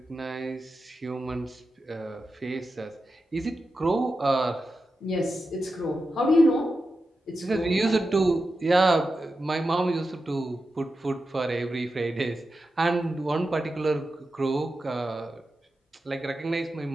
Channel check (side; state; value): both; normal; correlation 0.90